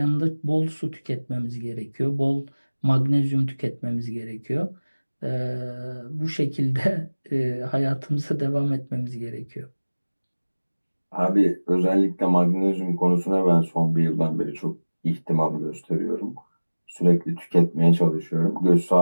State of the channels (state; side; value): inverted; both; correlation -1.00